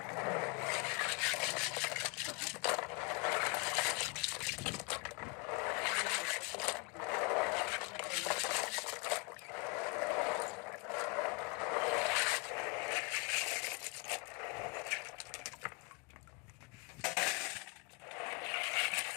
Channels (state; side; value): quieter; right; 29.6 dB